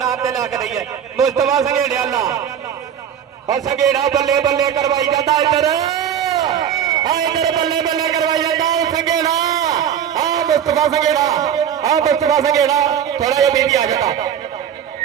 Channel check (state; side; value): quieter; left; 9.0 dB